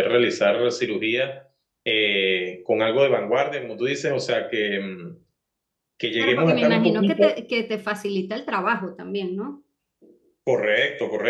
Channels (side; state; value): both; identical; correlation 1.00